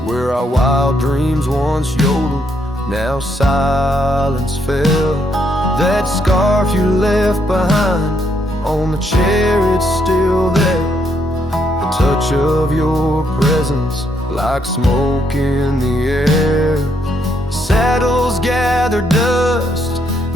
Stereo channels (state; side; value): normal; both; correlation 0.74